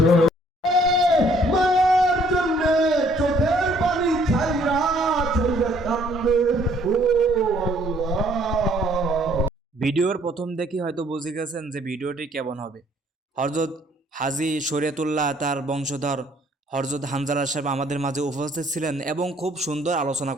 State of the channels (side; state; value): both; normal; correlation 0.62